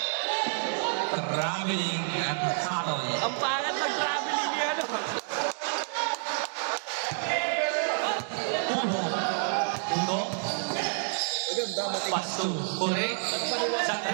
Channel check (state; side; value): silent; left; digital silence